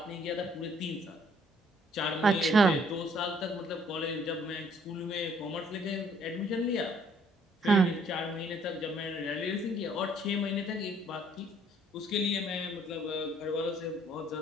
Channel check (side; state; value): both; normal; correlation 0.63